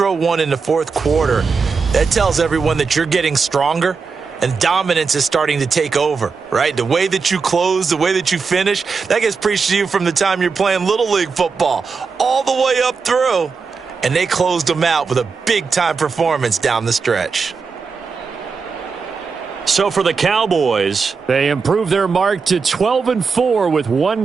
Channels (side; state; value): left; quieter; 5.1 dB